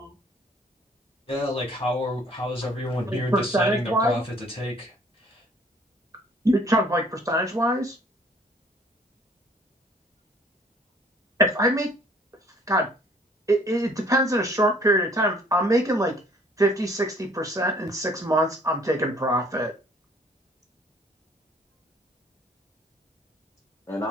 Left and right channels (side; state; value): both; normal; correlation 0.58